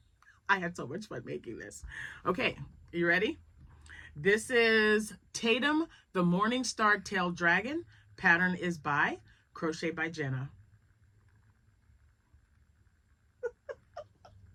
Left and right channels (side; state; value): both; identical; correlation 1.00